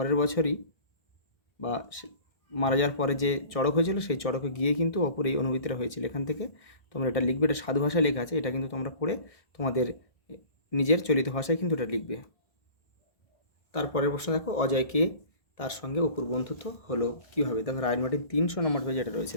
বছরই বা মারা যাওয়ার পরে যে চড়ক হয়েছিল সেই চড়কে গিয়ে কিন্তু অপুর এই অনুভূতিটা হয়েছিল। এখান থেকে তোমরা এটা লিখবে, এটা সাধু ভাষায় লেখা আছে, এটা কিন্তু তোমরা পড়ে তোমাদের নিজের চলিত ভাষায় কিন্তু এটা লিখবে। তারপরের প্রশ্ন দেখো, অজয়কে তার সঙ্গে অপুর বন্ধুত্ব হলো কীভাবে? দেখো রাইট মার্টিন 300 নম্বর পেজে এটা রয়েছে।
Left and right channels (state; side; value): late; right; 1.6 ms